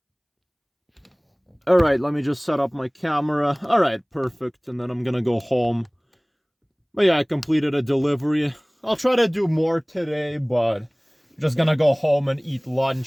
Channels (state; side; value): identical; both; correlation 1.00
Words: Alright, let me just set up my camera. Alright, perfect. And then I'm gonna go home. But yeah, I completed a delivery. I'll try to do more today, but I'm just gonna go home and eat